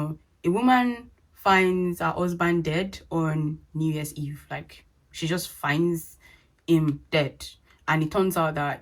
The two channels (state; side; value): identical; both; correlation 1.00